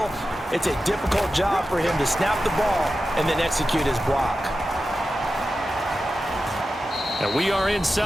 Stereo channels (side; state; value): both; normal; correlation 0.92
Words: It's a difficult job for him to snap the ball and then execute his block. And we are